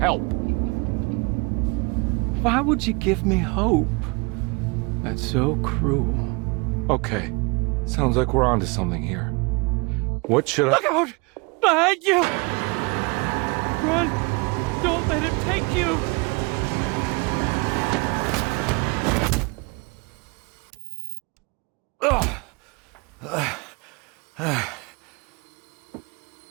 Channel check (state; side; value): quieter; left; 28.7 dB